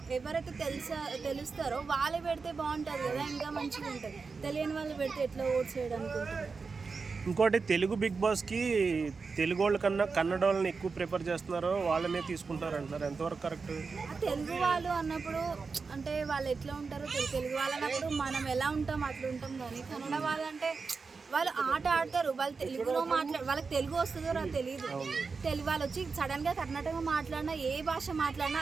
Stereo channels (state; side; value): quieter; left; 4.7 dB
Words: ఎవరైతే తెలుస్తారో వాళ్ళే పెడితే బాగుంటుంది కదా, ఇంకా మంచిగా ఉంటుంది. తెలియని వాళ్ళు పెడితే ఎట్లా ఓట్స్ చేయడానికి ఉంటుంది. ఇంకోటి తెలుగు బిగ్ బాస్కి తెలుగు వాళ్ళ కన్నా కన్నడ వాళ్ళని ఎక్కువ ప్రిఫర్ చేస్తున్నారో వాళ్ళనే తీసుకుంటున్నారు అంటున్నారు, ఎంతవరకు కరెక్ట్? తెలుగు వాళ్ళు అన్నప్పుడు అంటే వాళ్ళు ఎట్లా ఉంటారో తెలుగు వాళ్ళు అన్నప్పుడు మనం ఎలా ఉంటాం అట్లా ఉంటాం, కానీ కన్నడ వాళ్ళు అంటే వాళ్ళు ఆట ఆడతారు, వాళ్ళు తెలుగులో వాళ్ళకి తెలుగు వస్తుందో నాకు తెలియదు. తెలుగు వాళ్ళు వచ్చి సడన్గా కర్ణాటక మాట్లాడినా, ఏ భాష మాట్లాడినా